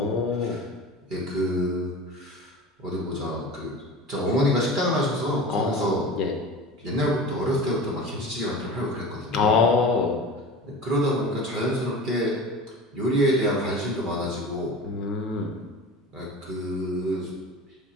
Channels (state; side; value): normal; both; correlation 0.35